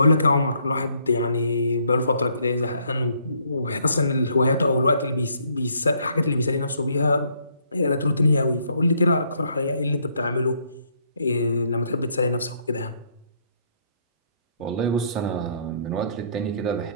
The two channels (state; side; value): inverted; both; correlation -0.68